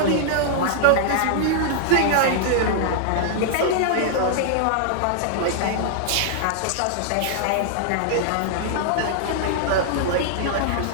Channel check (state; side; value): different; both; correlation -0.01